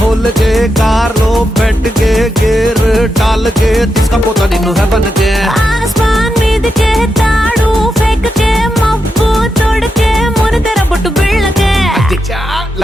के कार लो बैठ के गेर डाल के तिसका पोता निन्नु है बन के आसमान మీద के తాడు फेंक के మబ్బు తోడకే మొన తెర బొట్టు బిళ్ళకే అచ్చా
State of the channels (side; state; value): both; normal; correlation 0.86